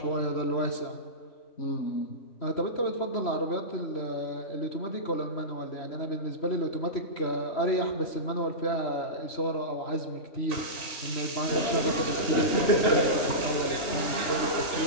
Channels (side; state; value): right; late; 3.0 ms